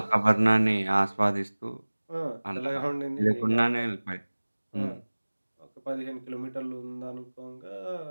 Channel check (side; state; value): both; inverted; correlation -1.00